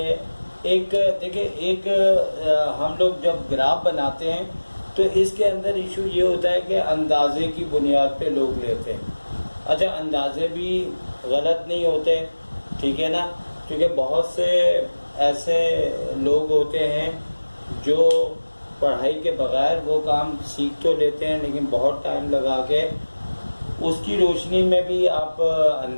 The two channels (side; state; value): both; inverted; correlation -1.00